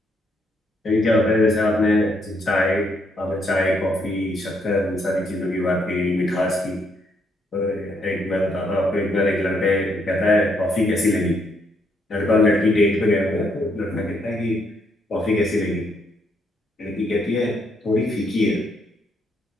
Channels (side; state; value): both; normal; correlation 0.74